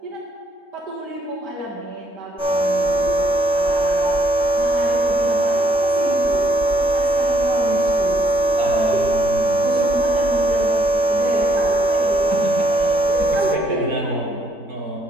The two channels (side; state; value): left; late; 3.7 ms